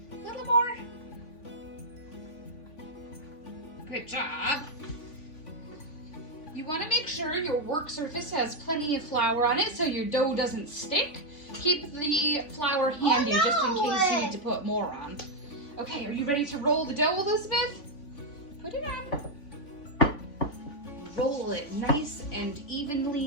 more. Good job. You want to make sure your work surface has plenty of flour on it so your dough doesn't stick. Keep the flour handy just in case you need to put more on. Okay, are you ready to roll the dough, Elizabeth? Put it on. Roll it nice and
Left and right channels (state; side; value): late; right; 3.5 ms